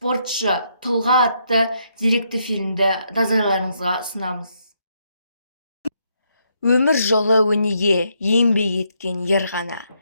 тұлға атты деректі фильмді назарларыңызға ұсынамыз. Өмір жолы өнеге еңбек еткен ер ғана,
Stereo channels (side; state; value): both; inverted; correlation -0.76